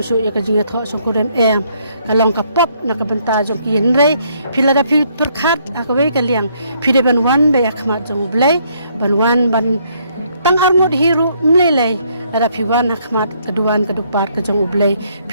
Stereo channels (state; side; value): inverted; both; correlation -0.69